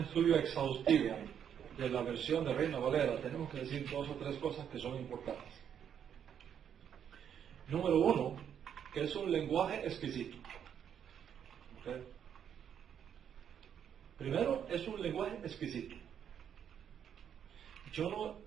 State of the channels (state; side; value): quieter; left; 8.7 dB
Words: exhaustivo de la versión de Reina Valera, tenemos que decir 2 o 3 cosas que son importantes. Número 1, que es un lenguaje exquisito. ¿Ok? Primero, es un lenguaje exquisito. Yo